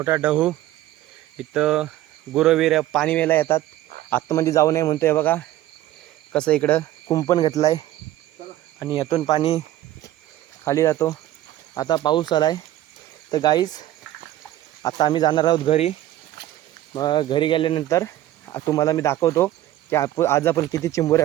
डहू इथं गुरवीर पाणी वेला येतात. आतमध्ये जाऊ नये म्हणतोय. बघा कसं इकडं कुंपण घेतलं आहे आणि यातून पाणी खाली जातो. आता पाऊस आला आहे. तर गाईज आता आम्ही जाणार आहोत घरी. मग घरी गेल्यानंतर तुम्हाला मी दाखवतो की आज आपण किती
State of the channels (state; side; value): quieter; left; 14.1 dB